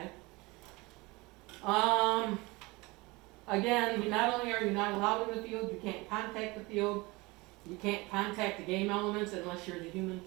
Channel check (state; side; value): quieter; left; 23.8 dB